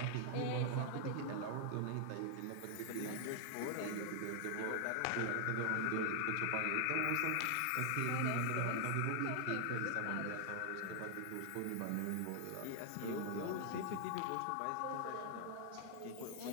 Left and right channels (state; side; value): different; both; correlation 0.00